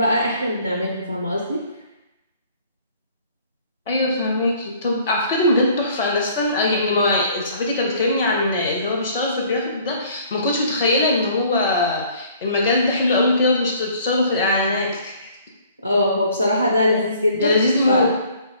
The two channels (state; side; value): inverted; both; correlation -0.56